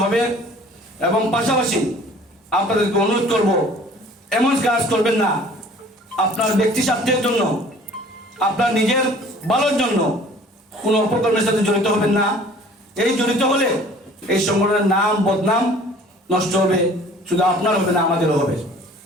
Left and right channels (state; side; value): normal; both; correlation 0.50